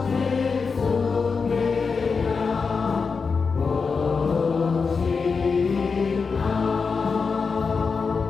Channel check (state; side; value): quieter; right; 5.1 dB